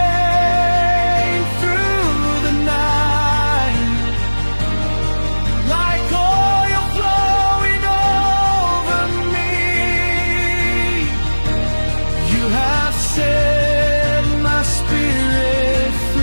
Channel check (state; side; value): inverted; both; correlation -1.00